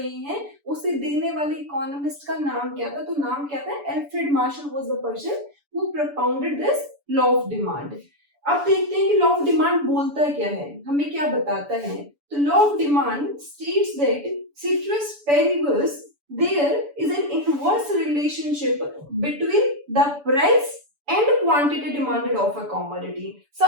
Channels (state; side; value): late; left; 7.0 ms